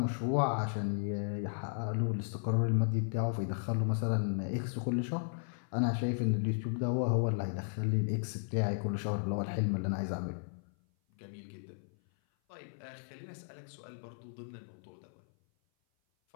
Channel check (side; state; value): right; silent; 54 dB below the other